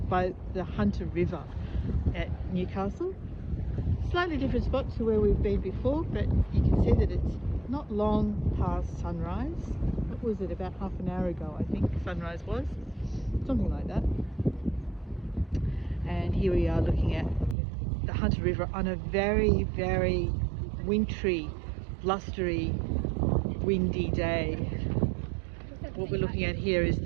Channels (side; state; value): left; drops out; at 17.6 s